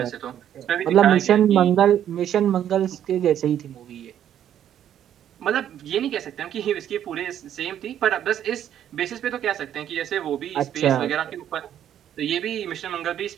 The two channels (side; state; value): left; quieter; 10.4 dB